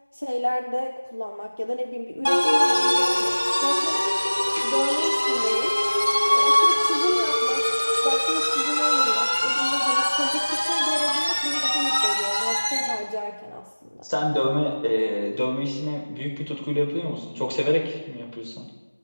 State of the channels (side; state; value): both; inverted; correlation -1.00